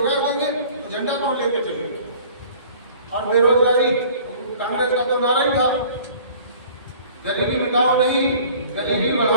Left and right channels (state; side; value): inverted; both; correlation -0.49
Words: देंगे तो झंडा कौन लेके चलेगा? और बेरोजगारी कांग्रेस का तो नारा ही था, गरीबी मिटाओ नहीं गरीबी